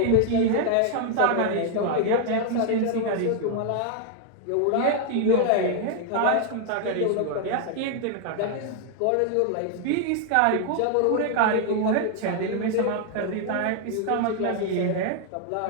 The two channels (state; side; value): different; both; correlation 0.00